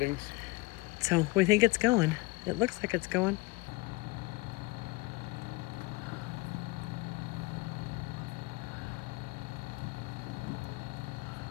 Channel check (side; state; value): right; quieter; 22.9 dB